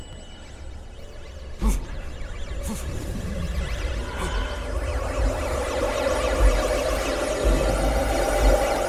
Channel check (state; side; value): identical; both; correlation 1.00